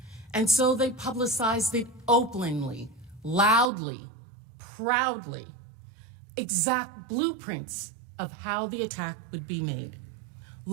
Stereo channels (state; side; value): drops out; left; at 3.7 s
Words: And so they publicized it openly, loudly, proudly, exact blueprints of how the attack would be made.